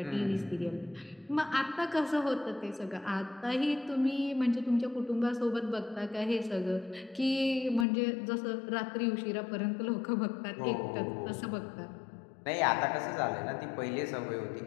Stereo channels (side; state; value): right; drops out; at 7.9 s